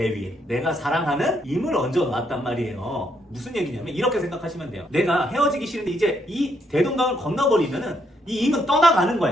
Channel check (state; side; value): normal; both; correlation 0.74